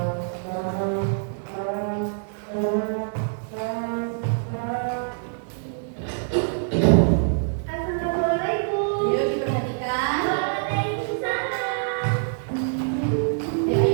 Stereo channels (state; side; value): silent; left; digital silence